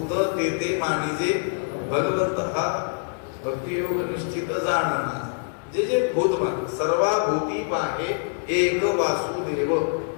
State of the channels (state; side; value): silent; right; 62 dB below the other